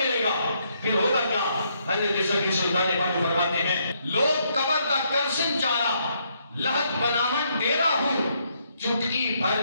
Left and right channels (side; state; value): both; inverted; correlation -0.74